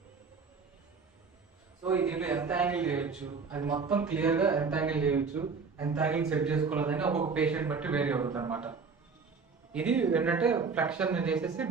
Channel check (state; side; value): quieter; left; 5.0 dB